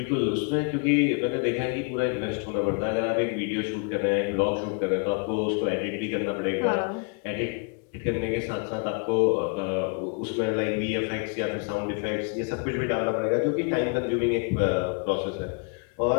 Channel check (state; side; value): quieter; right; 37.8 dB